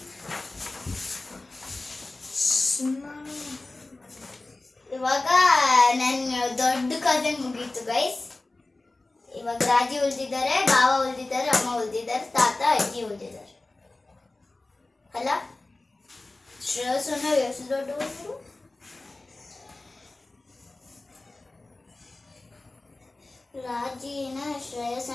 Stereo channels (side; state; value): right; quieter; 3.1 dB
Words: ಇವಾಗ ನನ್ನ ದೊಡ್ಡ ಕಸಿನ್ ಮುಗೀತು ಗೈಸ್. ಇವಾಗ ರಾಜಿ ಉಳಿದಿದ್ದಾರೆ, ಬಾವ ಉಳಿದಿದ್ದಾರೆ, ಅಮ್ಮ ಉಳಿದಿದ್ದಾರೆ, ತಾತ ಅಜ್ಜಿ ಉಳಿದಿದ್ದಾರೆ. ಅಲ್ಲ ಶ್ರೇಯಸ್ಸನ್ನ ಎಷ್ಟು ದೊಡ್ಡವರು? ರಾಜಿನ